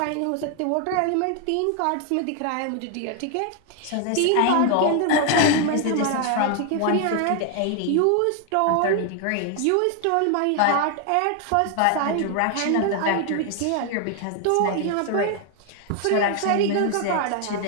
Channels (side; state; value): both; different; correlation 0.01